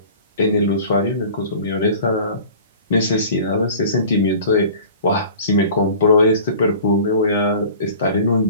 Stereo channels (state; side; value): inverted; both; correlation -0.43